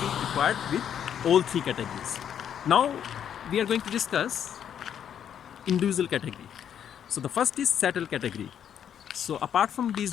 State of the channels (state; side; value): quieter; right; 9.1 dB